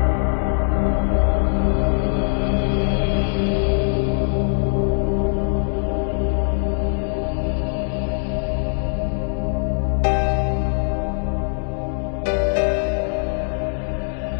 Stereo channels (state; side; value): silent; right; digital silence